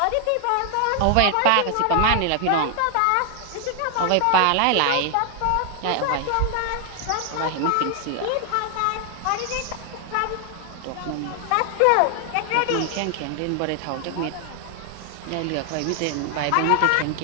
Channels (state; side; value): different; both; correlation 0.00